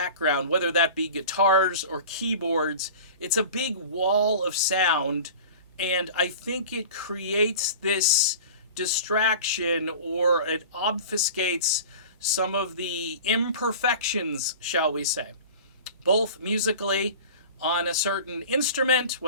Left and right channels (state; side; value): inverted; both; correlation -0.38